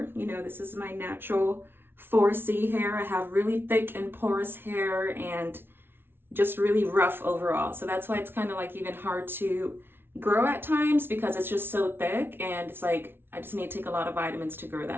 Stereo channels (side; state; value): left; late; 0.11 ms